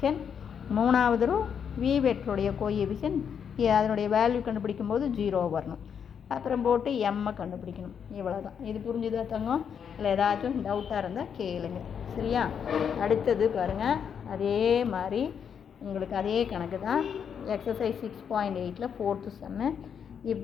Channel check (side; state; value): right; quieter; 7.5 dB